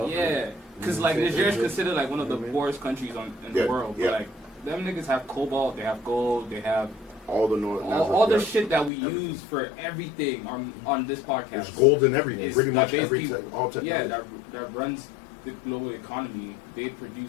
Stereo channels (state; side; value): drops out; right; at 8.9 s